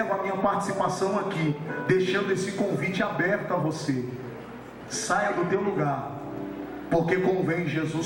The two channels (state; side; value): identical; both; correlation 1.00